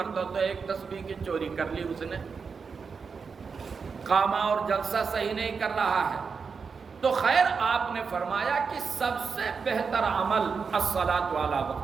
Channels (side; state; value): left; quieter; 5.4 dB